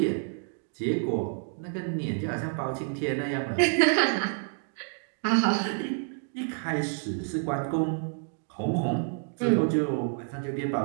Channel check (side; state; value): left; silent; 59 dB below the other